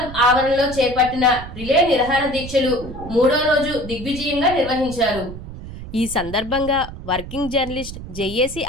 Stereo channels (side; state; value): right; noise; rumble, 11 dB below the sound